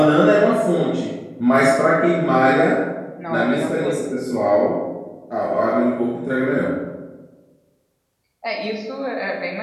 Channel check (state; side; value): identical; both; correlation 1.00